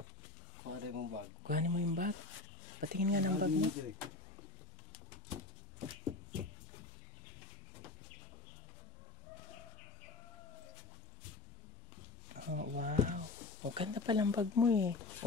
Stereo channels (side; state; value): right; quieter; 3.6 dB